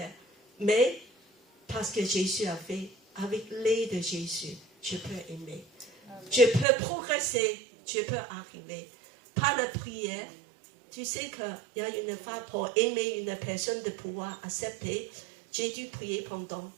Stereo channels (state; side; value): drops out; left; at 6.7 s